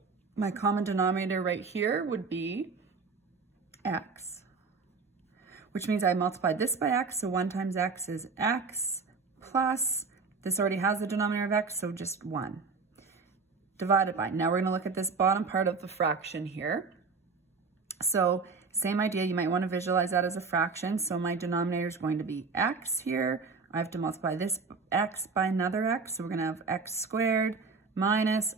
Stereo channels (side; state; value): left; quieter; 4.6 dB